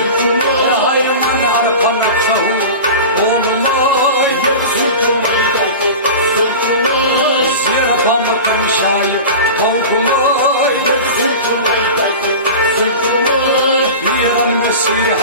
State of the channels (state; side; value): inverted; both; correlation -0.31